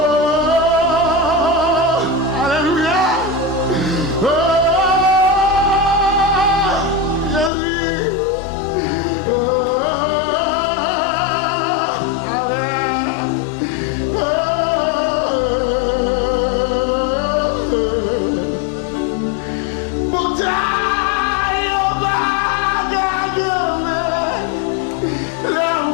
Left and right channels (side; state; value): right; drops out; at 7.5 s